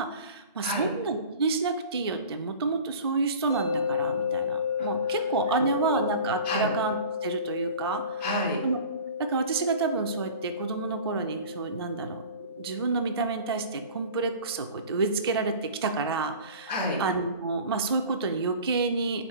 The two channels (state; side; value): inverted; both; correlation -0.40